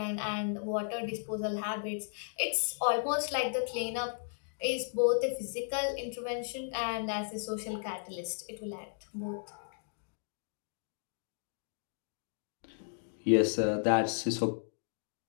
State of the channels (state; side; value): silent; right; digital silence